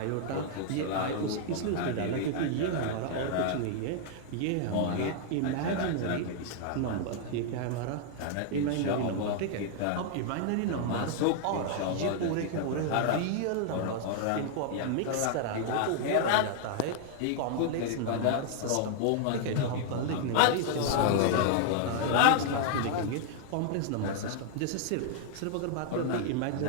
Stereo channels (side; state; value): both; different; correlation -0.01